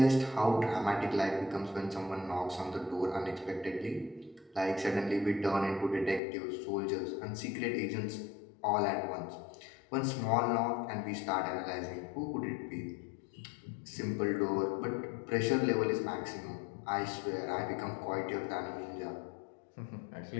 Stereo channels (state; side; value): drops out; right; at 6.2 s